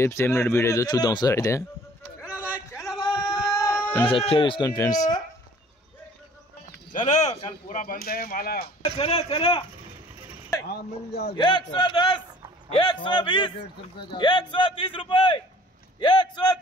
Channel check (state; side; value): normal; both; correlation 0.53